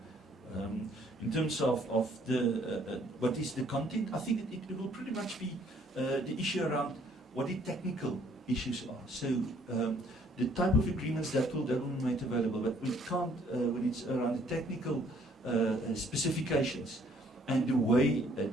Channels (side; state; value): both; normal; correlation 0.63